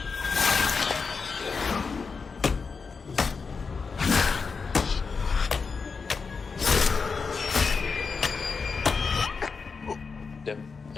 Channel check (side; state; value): right; quieter; 5.0 dB